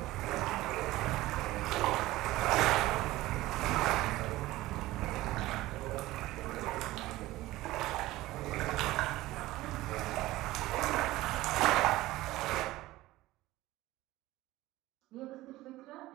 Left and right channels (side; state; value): left; quieter; 17.5 dB